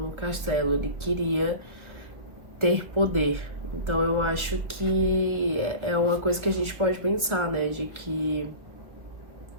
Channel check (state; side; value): late; left; 1.6 ms